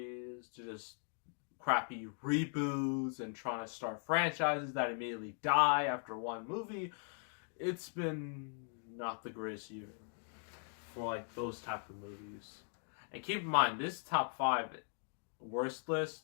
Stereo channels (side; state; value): right; silent; 51 dB below the other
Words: to just crappy reboots and trying to start franchises that immediately die after one movie. It's been not the greatest year for like those type of movies. And keep in mind, this top 5 worst